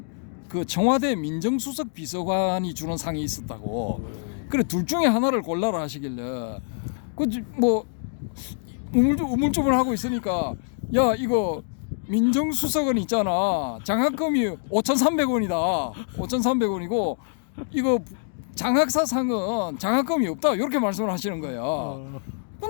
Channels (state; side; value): silent; right; digital silence